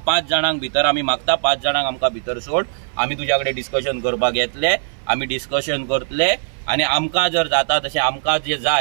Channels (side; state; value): left; silent; 61 dB below the other